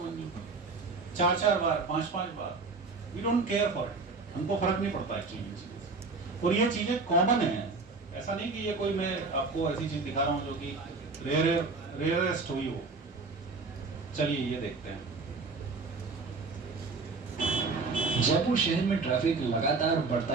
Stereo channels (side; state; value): left; quieter; 4.0 dB